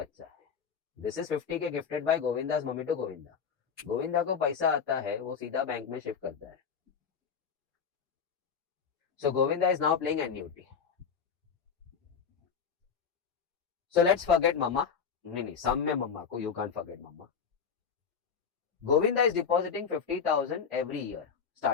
है. This is 50K gifted by Govinda's mummy to Govinda. Govinda को पैसा आता है, वो सीधा बैंक में शिफ्ट करता है. So Govinda is now playing annuity. So let's forget mamma. नहीं, सम में मम्मा को, you can't forget mamma. Govinda is depositing 50,000 every year,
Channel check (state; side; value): quieter; right; 6.5 dB